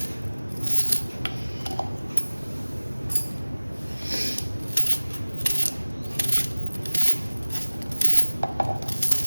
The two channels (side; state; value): both; inverted; correlation -1.00